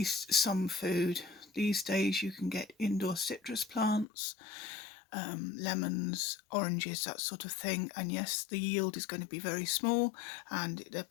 some food. These days you can get indoor citrus plants, lemons, oranges, that sort of thing. And yes, the yield is going to be very small and they're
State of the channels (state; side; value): drops out; right; at 4.0 s